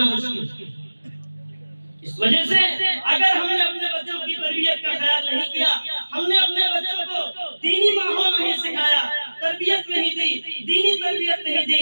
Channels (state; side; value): inverted; both; correlation -1.00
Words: مشکل۔ اس وجہ سے اگر ہم نے اپنے بچوں کی تربیت کا خیال نہیں کیا، ہم نے اپنے بچوں کو دینی ماحول نہیں سکھایا، تربیت نہیں دی، دینی تربیت نہیں